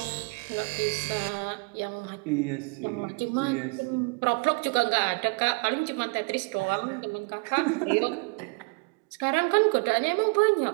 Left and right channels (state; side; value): quieter; left; 31.3 dB